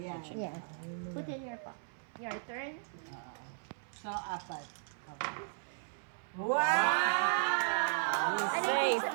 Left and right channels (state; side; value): silent; left; 54 dB below the other